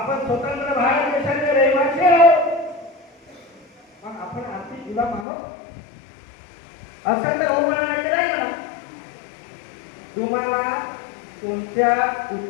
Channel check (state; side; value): drops out; right; at 5.2 s